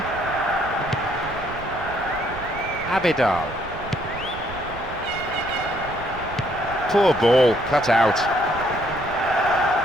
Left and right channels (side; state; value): right; noise; rumble, 13 dB below the sound